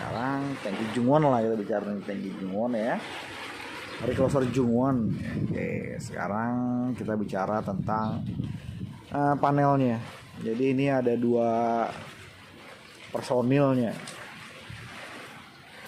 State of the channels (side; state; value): both; identical; correlation 1.00